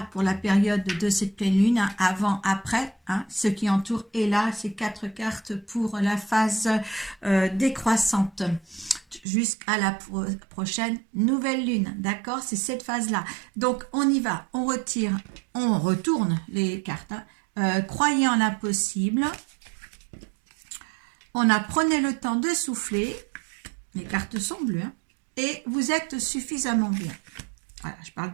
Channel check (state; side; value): drops out; left; at 9.2 s